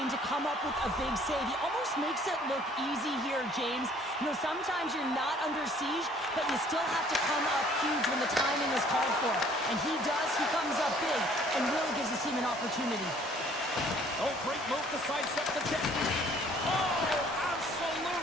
to come up with a big save. He almost makes it look easy here, James. You know, sometimes you're not under siege, but you still have to come up huge when the timing is called for. And he does. He comes up big and really gives his team an opportunity. Oh, great move to sidestep the check. Oh,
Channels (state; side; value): normal; both; correlation 0.57